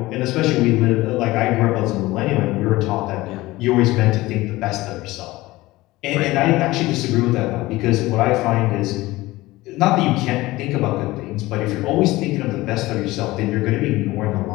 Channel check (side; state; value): right; quieter; 18.9 dB